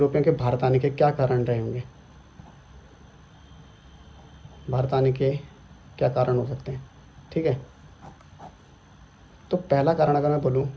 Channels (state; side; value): identical; both; correlation 1.00